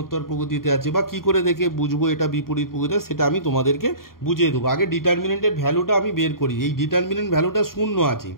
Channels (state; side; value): late; right; 0.92 ms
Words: প্রগতিতে আছে, বা কী করে দেখে বুঝবো এটা বিপরীত প্রগতিতে, সেটা আমি তোমাদেরকে বুঝিয়ে দেবো। আগে ডিটারমিনেন্টের ভ্যালুটা আমি বের করি। এই ডিটারমিনেন্ট ভ্যালুটা 0 আছে,